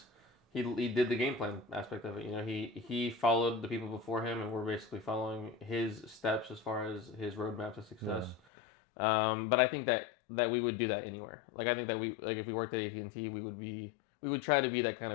He did the game plan aspect of it. He followed the people before him, and we're basically following his steps as far as his roadmap to success. Yeah. But I think that we would do that anywhere. Like I think that if we worked at AT&T, we would try to be that kind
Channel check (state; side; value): drops out; right; at 8.4 s